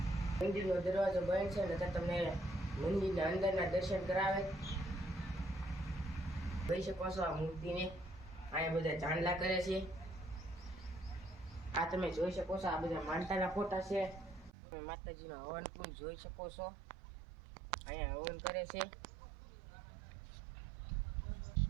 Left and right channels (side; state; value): left; drops out; at 14.5 s